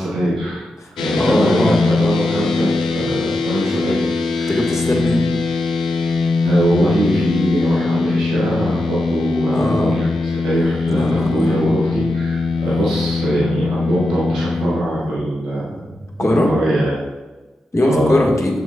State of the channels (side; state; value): both; normal; correlation 0.88